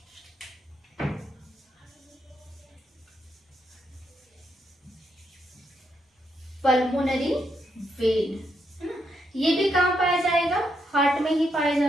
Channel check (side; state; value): both; normal; correlation 0.79